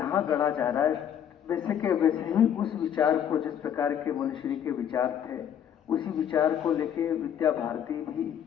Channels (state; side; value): quieter; right; 9.2 dB